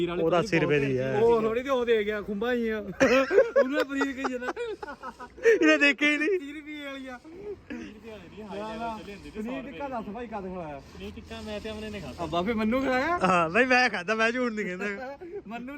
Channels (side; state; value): both; identical; correlation 1.00